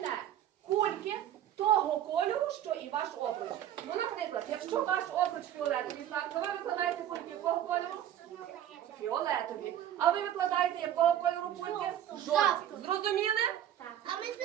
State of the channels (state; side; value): quieter; left; 11.0 dB